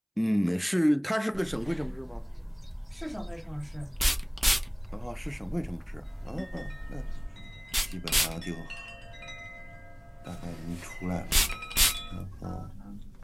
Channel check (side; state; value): both; identical; correlation 1.00